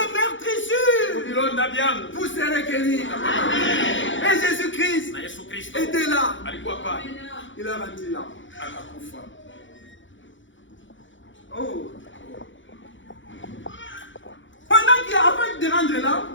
meurtrissures, Vilonda vyangu. vous serez guéris. Et Jésus-Christ Na Yesu Kristo était là. alikuwa pale. Il a rendu là. Akakufa. Oh. Pendant qu'il avant de rendre là,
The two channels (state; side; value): late; right; 0.55 ms